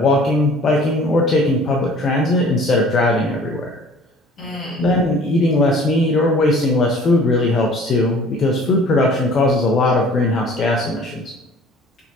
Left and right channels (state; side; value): normal; both; correlation 0.49